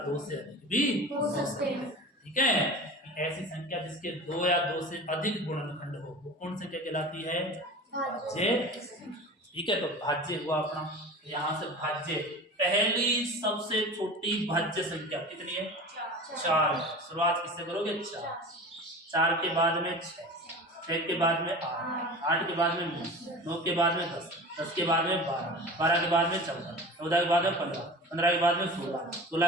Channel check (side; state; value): both; normal; correlation 0.35